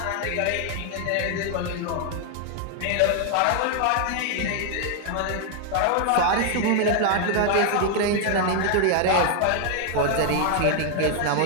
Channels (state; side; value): different; both; correlation 0.00